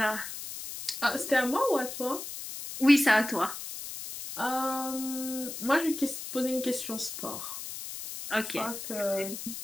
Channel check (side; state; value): left; noise; hiss, 9 dB below the sound